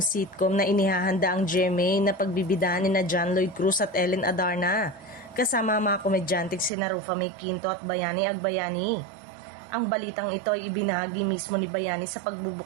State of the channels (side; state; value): left; drops out; at 6.7 s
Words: na inihahanda ang GMA na pagbibidahan ni John Lloyd Cruz at Ellen Adarna, kasama ang mga komedyanteng sina Rufa May Quinto at Bayani Agbayani. Ang balitang ito ay ibinahagi mismo ni Bayani sa